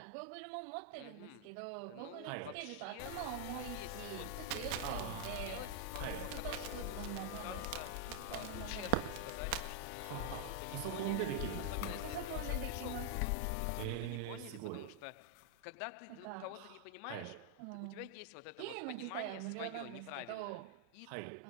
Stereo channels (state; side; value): different; both; correlation 0.00